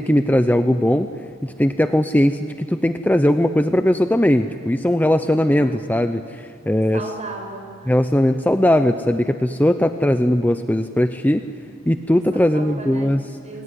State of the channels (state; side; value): normal; both; correlation 0.92